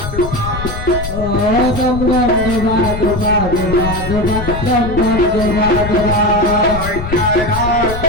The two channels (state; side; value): noise; left; rumble, 7 dB below the sound